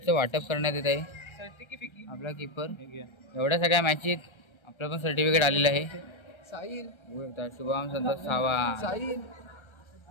वाटप करण्यात येत आहे. आपला कीपर एवढ्या सगळ्या मॅचीत आपलं पण सर्टिफिकेट आलेलं आहे. शुभम संतोष सावा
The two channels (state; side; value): late; right; 1.3 ms